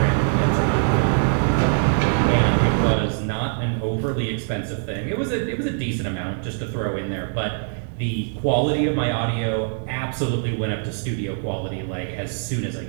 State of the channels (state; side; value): silent; left; digital silence